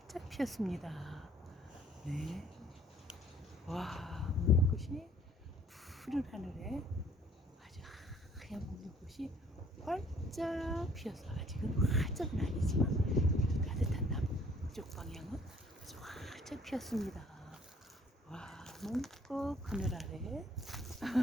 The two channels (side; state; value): both; normal; correlation 0.59